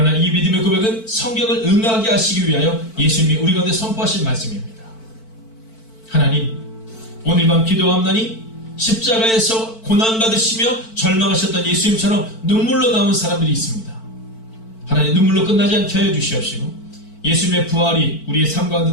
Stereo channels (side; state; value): right; late; 4.5 ms